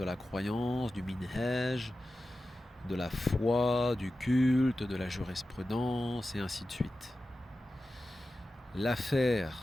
la croyance, du minhaj, de la foi, du culte, de la jurisprudence et ainsi de suite. L'affaire,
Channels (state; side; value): normal; both; correlation 0.94